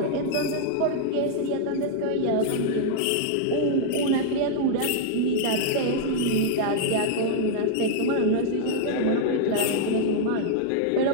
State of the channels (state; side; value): different; both; correlation -0.01